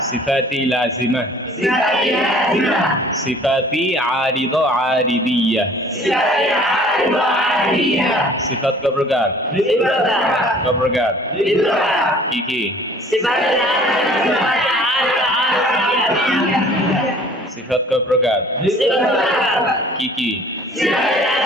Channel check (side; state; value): both; normal; correlation 0.51